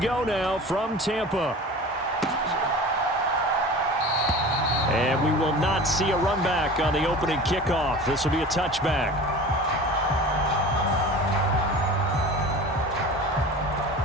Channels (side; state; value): both; normal; correlation 0.37